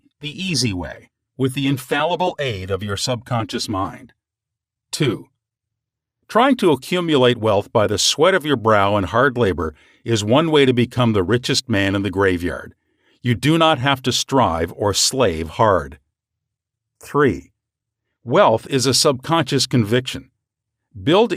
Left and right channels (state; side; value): identical; both; correlation 1.00